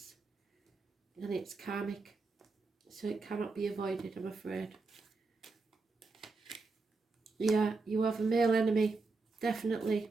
And it's karmic. So it cannot be avoided, I'm afraid. Yeah, you have a male enemy. Definitely.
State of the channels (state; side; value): quieter; left; 3.9 dB